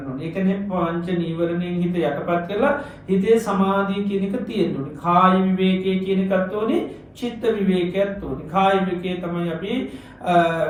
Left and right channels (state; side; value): identical; both; correlation 1.00